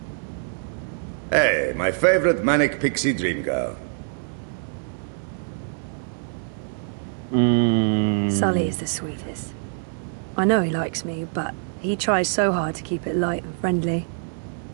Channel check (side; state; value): left; silent; digital silence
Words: Hey, my favorite manic pixie dream girl. Sully is the sweetest. I know he likes me, but he tries so hard to keep it light and friendly.